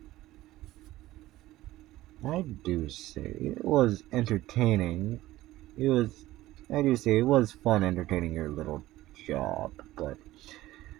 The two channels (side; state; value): left; quieter; 16.2 dB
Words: I do say it was entertaining. I do say it was fun entertaining your little job, but